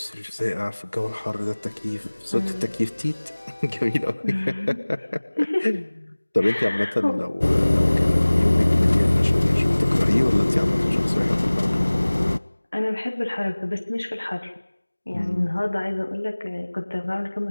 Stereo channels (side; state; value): both; inverted; correlation -1.00